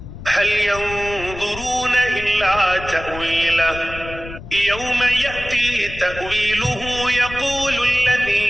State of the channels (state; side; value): noise; left; rumble, 13 dB below the sound